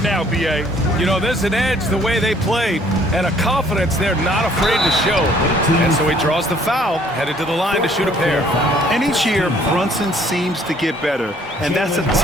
now, B.A. You know, there's an edge the way they played and a confidence they're not afraid to show. And so he draws the foul, headed to the line to shoot a pair. And each year, Brunson seems to get better, and that's a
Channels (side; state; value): both; normal; correlation 0.60